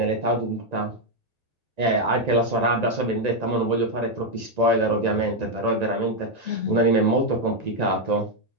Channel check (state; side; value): late; left; 1.9 ms